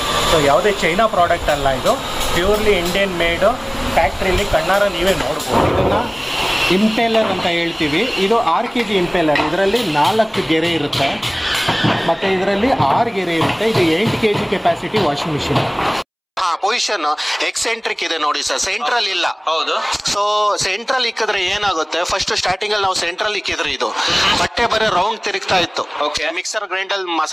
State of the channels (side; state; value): both; identical; correlation 1.00